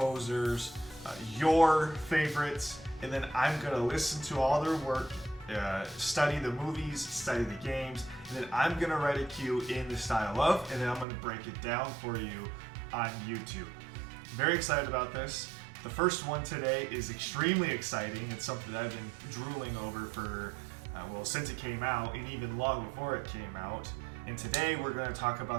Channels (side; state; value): left; drops out; at 11.1 s